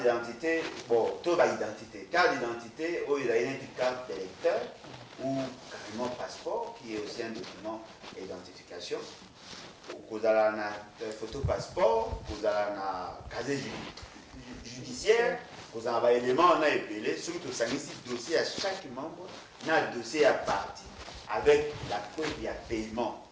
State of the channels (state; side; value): identical; both; correlation 1.00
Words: bon, tout va identité. Carte d'identité, il y a une carte d'électeur ou carrément passeport qui est aussi un document d'identification. Vous avez une photo passeport, vous avez un casier judiciaire, vous avez un élément, on a épelé, surtout ça un dossier à chaque membre, on a un dossier à partie avec la preuve il y a paiement.